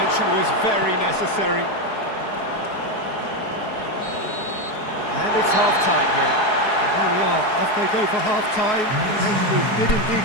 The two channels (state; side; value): late; right; 4.7 ms